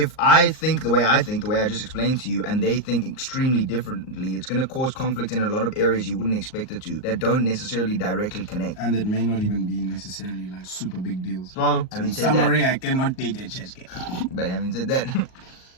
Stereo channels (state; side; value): late; right; 38 ms